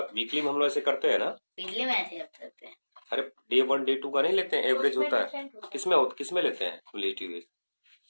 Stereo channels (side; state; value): both; inverted; correlation -1.00